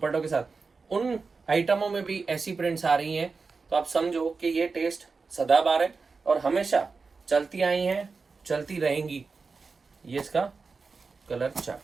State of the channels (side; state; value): left; quieter; 4.5 dB